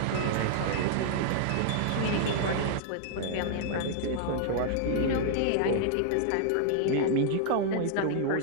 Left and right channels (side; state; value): both; different; correlation -0.01